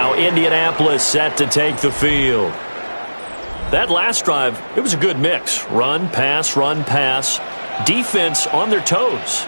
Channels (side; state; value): both; inverted; correlation -1.00